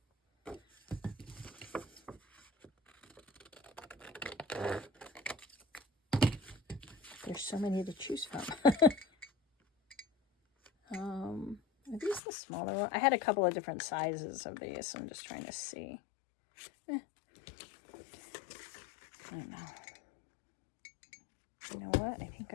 There's so many to choose from. Are these the smaller one? I had a couple of different sizes of these, so I'm just trying to see. I don't know. You know what? I think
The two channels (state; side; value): drops out; right; at 12.2 s